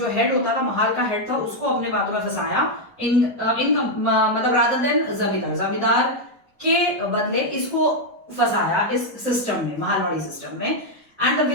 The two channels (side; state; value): both; normal; correlation 0.00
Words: हेड होता था, महाल का हेड था, उसको अपने बातों में फंसाया, मतलब रादर देन जमींदार के बदले इसको फंसाया इस सिस्टम में, महालवाड़ी सिस्टम में। And the